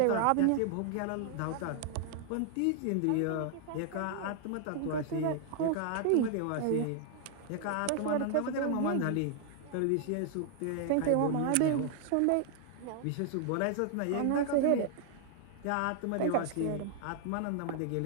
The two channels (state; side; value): different; both; correlation 0.00